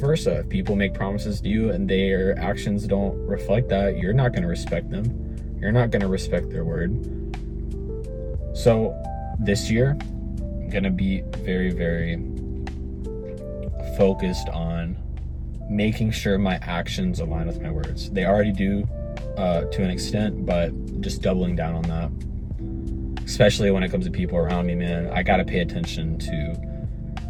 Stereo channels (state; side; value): identical; both; correlation 1.00